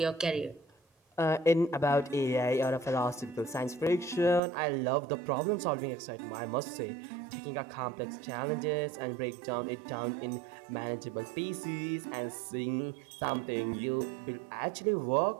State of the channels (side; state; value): left; drops out; at 4.4 s